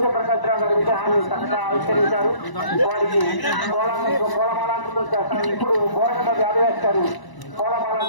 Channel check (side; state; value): right; late; 1.0 ms